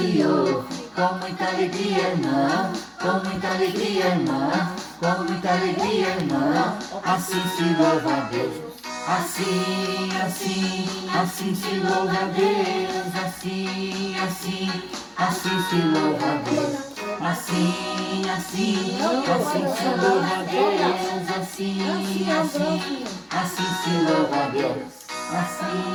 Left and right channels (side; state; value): both; identical; correlation 1.00